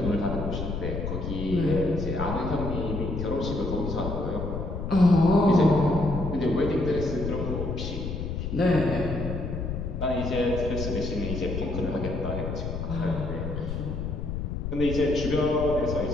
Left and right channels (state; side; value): noise; left; rumble, 4 dB below the sound